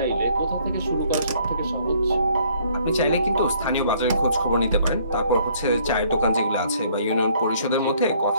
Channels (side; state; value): both; inverted; correlation -0.62